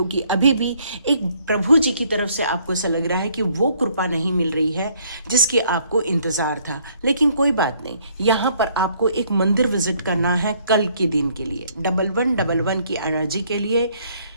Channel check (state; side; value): inverted; both; correlation -0.65